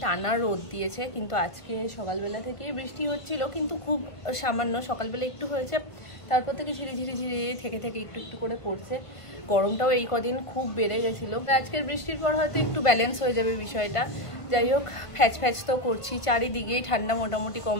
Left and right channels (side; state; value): right; late; 1.7 ms